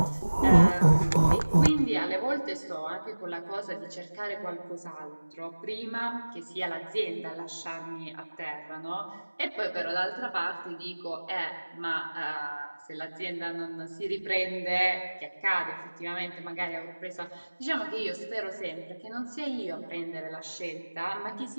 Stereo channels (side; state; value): both; inverted; correlation -1.00